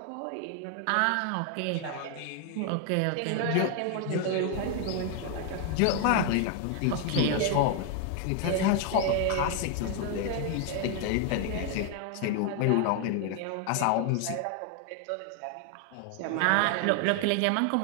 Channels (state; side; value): different; both; correlation 0.00